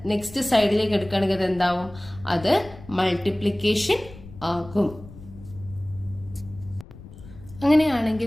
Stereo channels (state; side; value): noise; left; rumble, 18 dB below the sound